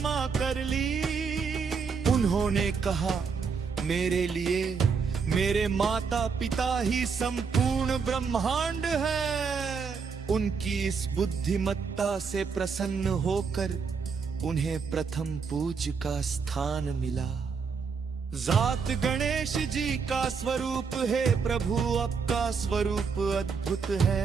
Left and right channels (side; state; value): left; quieter; 5.6 dB